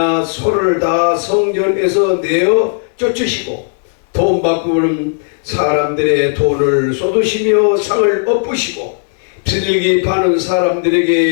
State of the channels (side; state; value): right; silent; digital silence